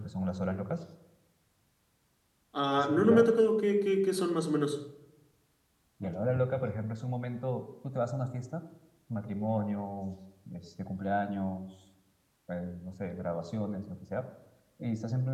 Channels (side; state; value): both; identical; correlation 1.00